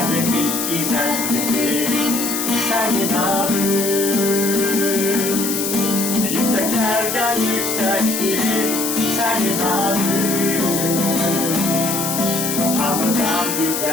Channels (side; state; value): left; noise; hiss, 2 dB below the sound